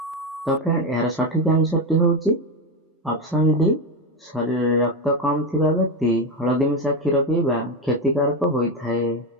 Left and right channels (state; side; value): normal; both; correlation 0.13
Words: तो फ्रेंड यार सठिक आंसर टी होची ऑप्शन डी शरीर रक्त कम थिबा व्यक्ति हळदी मिसा क्षीर पीबा क्षतिकारक होइथाय।